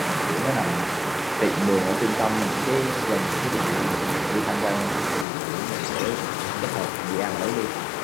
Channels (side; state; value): right; drops out; at 5.2 s